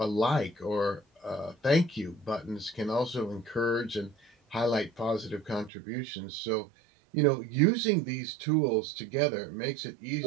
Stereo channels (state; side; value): drops out; left; at 5.7 s